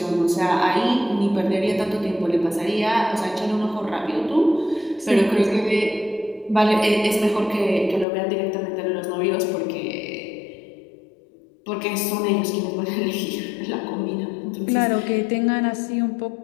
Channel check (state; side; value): drops out; right; at 8.1 s